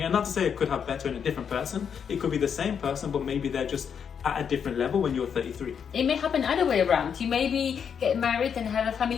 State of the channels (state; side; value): quieter; right; 7.3 dB